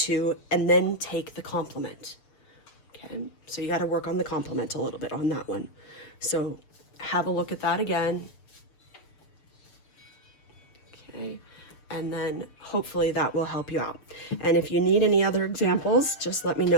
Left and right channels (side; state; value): right; late; 6.8 ms